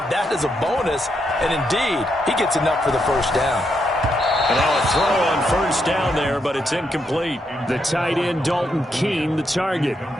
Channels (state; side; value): normal; both; correlation 0.80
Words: that as a bonus. And indeed, he gets enough for the first down. And now a throw on first down there, but it's incomplete. The tight end, Dalton Keene, the target,